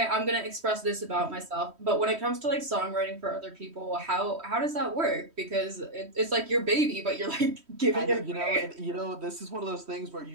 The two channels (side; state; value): left; late; 3.1 ms